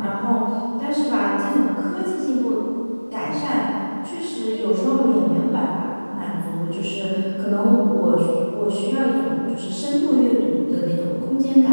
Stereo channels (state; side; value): inverted; both; correlation -1.00